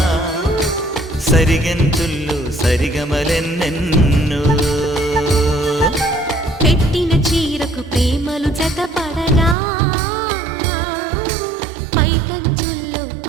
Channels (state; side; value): drops out; left; at 9.6 s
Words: సరిగంతుల్లో సరిగమలెన్నెన్నో పెట్టిన చీరకు ప్రేమలు జతపడగా